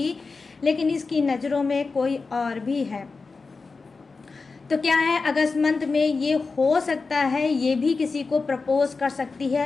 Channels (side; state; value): right; quieter; 4.3 dB